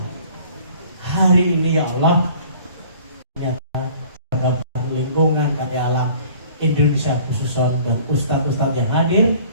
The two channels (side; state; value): both; inverted; correlation -0.51